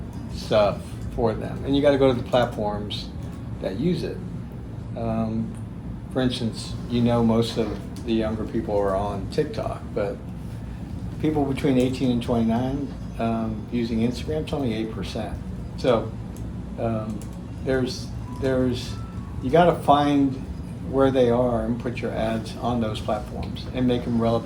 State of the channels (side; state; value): both; identical; correlation 1.00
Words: stuff for them, and you got to go to the platforms that use it. For instance, most of the younger people are on TikTok, but people between 18 and 29 using Instagram, it's only 8%. So you got to find where they are and put your ads on those platforms and make them